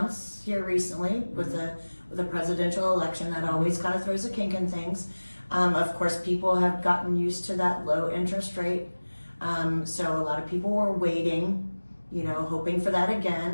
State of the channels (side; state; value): both; inverted; correlation -1.00